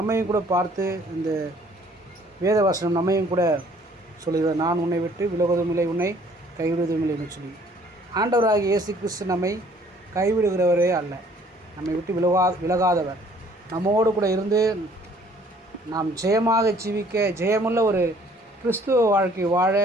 கூட பார்த்து இந்த வேத வசனம் நம்மையும் கூட சொல்கிறது, நான் உன்னை விட்டு விலகுவதும் இல்லை, உன்னை கைவிடுவதும் இல்லை என்று சொல்லி. ஆண்டவராகிய இயேசு கிறிஸ்து நம்மை கைவிடுகிறவரே அல்ல, நம்மை விட்டு விலகாதவர். நம்மோடு கூட இருந்து நாம் ஜெயமாக ஜீவிக்க, ஜெயமுள்ள ஒரு கிறிஸ்துவ வாழ்க்கை வாழ,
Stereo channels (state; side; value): normal; both; correlation 0.58